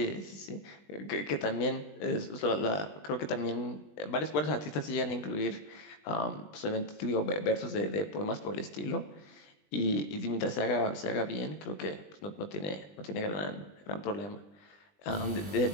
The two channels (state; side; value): late; right; 20 ms